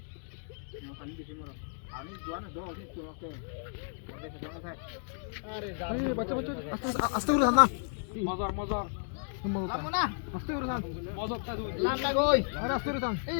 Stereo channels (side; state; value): right; silent; digital silence